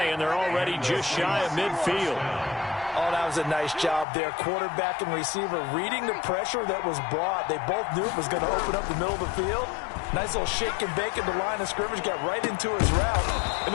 and they're already just shy of midfield. Oh, that was a nice job there. Quarterback and receiver reading the pressure that was brought. They both knew it was going to open up the middle of the field. Nice little shake and bake at the line of scrimmage, got right into his route. And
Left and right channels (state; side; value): drops out; right; at 4.0 s